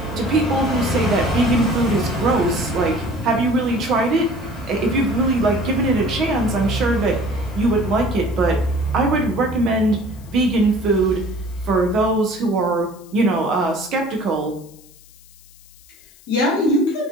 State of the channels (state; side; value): noise; left; hiss, 25 dB below the sound